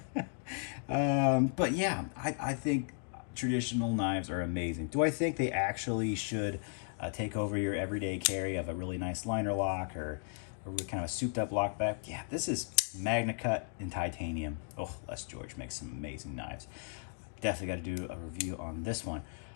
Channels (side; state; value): right; silent; 54 dB below the other